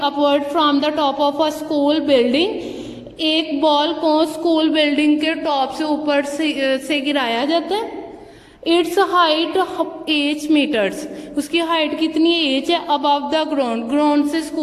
upward from the top of a school building. एक बॉल को स्कूल बिल्डिंग के टॉप से ऊपर से गिराया जाता है. Its height 8 metres. उसकी हाइट कितनी है, h है. अबव द ग्राउंड, ग्राउंड से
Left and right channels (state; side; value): identical; both; correlation 1.00